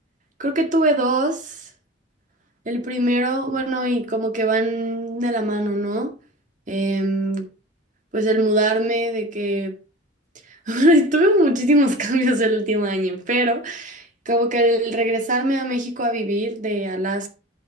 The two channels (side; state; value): both; normal; correlation 0.35